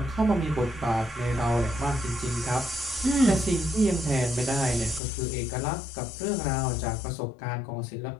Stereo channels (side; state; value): right; drops out; at 5.0 s